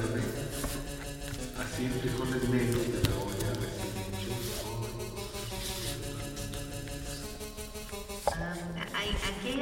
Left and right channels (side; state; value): both; identical; correlation 1.00